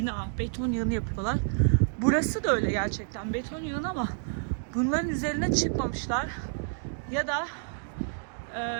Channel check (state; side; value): silent; left; digital silence